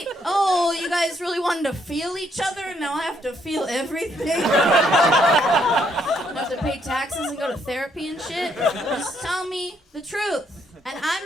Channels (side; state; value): both; normal; correlation 0.72